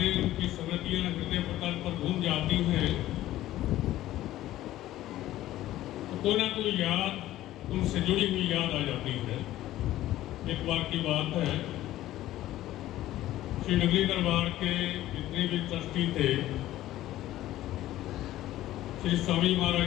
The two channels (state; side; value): quieter; right; 14.6 dB